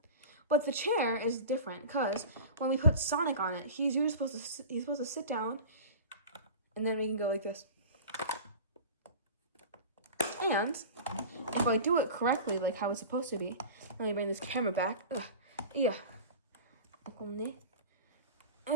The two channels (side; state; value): both; inverted; correlation -0.34